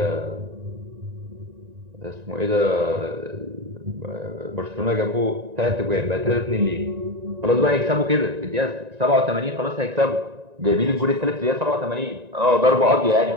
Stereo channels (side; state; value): left; late; 1.9 ms